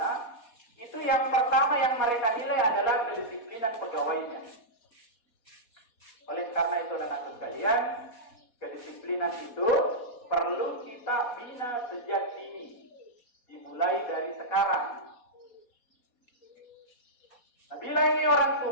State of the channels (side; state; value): right; late; 4.2 ms